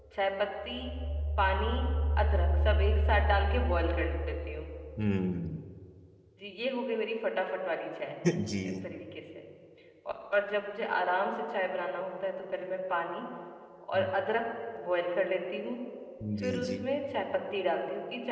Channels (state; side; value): identical; both; correlation 1.00